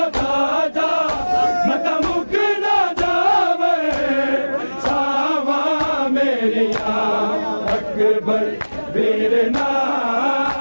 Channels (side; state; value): both; inverted; correlation -1.00